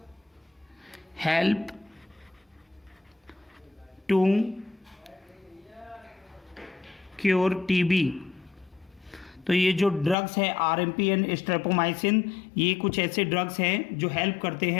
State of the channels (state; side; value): drops out; right; at 10.2 s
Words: help to cure TB. तो ये जो ड्रग्स हैं RMP एंड स्ट्रेप्टोमाइसिन, ये कुछ ऐसे ड्रग्स हैं जो हेल्प करते